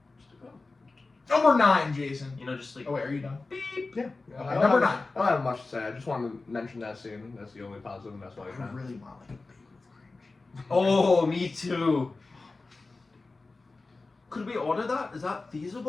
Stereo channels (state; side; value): quieter; right; 3.6 dB